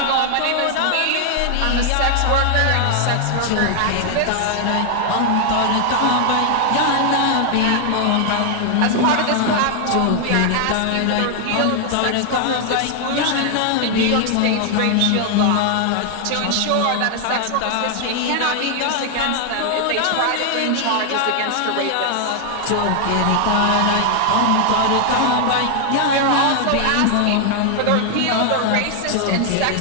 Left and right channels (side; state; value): both; different; correlation 0.00